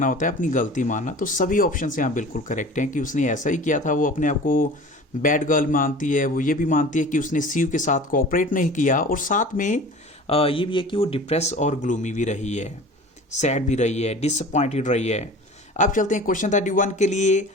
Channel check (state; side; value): normal; both; correlation 0.40